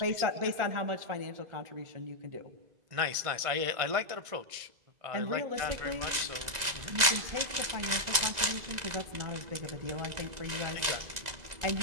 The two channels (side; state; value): left; late; 2.0 ms